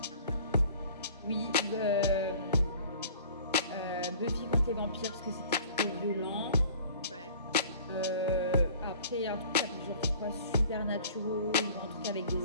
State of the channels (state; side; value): inverted; both; correlation -0.48